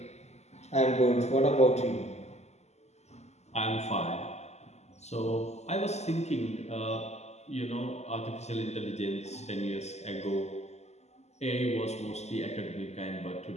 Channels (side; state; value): right; late; 0.32 ms